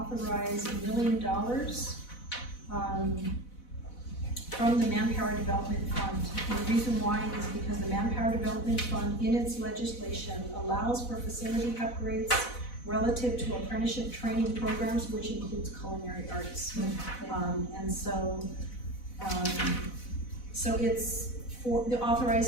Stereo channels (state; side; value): late; right; 4.0 ms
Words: $1 million from the Manpower Development Fund. And the reason why is because the Manpower Development Fund in its legislation allows for facility upgrades relative to apprenticeship training programs, which includes culinary arts. And so it's it